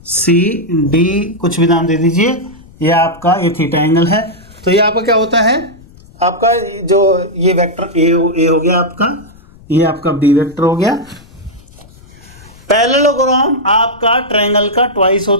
सी डी, कुछ भी नाम दे दीजिए। ये आपका ये थीटा एंगल है। तो ये आपका क्या होता है, आपका जो ये वेक्टर ए हो गया आपका, ये आपका बी वेक्टर हो गया। पैरेललोग्राम आपका ट्रायंगल का ट्वाइस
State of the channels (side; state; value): left; noise; rumble, 24 dB below the sound